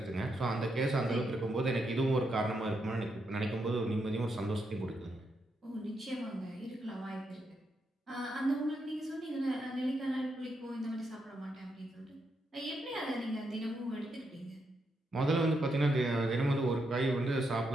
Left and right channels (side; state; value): both; normal; correlation 0.81